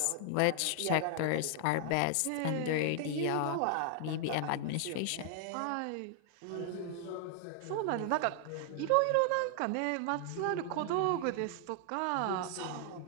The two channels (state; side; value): different; both; correlation 0.00